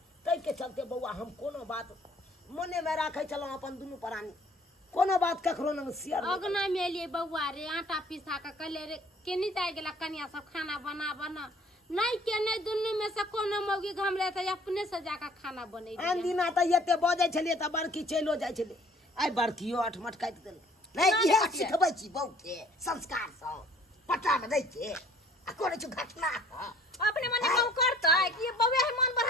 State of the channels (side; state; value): both; normal; correlation 0.56